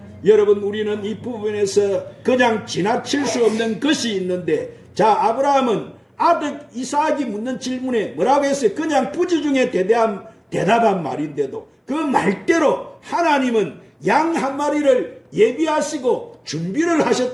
여러분 우리는 이 부분에서 그냥 지나칠 수 없는 것이 있는데, 자, 아브라함은 아들 이삭이 묻는 질문에 뭐라고 했어요? 그냥 부지 중에 대답한 말인데도 그 말대로 하나님은 양 한 마리를 예비하시고 준비를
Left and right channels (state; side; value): identical; both; correlation 1.00